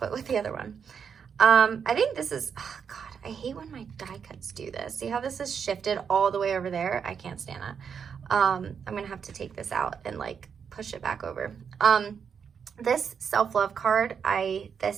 it with the other one. I think this is, oh God, I hate when my die cuts do this. See how this is shifted all the way over there? I can't stand that. I'm gonna have to take this out and like push it back over. This self-love card,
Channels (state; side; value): quieter; left; 6.9 dB